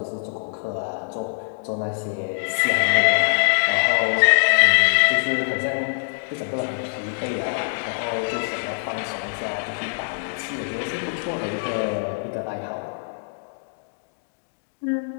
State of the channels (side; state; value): right; silent; digital silence